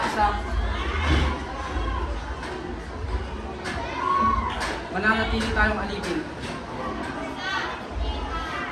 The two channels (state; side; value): identical; both; correlation 1.00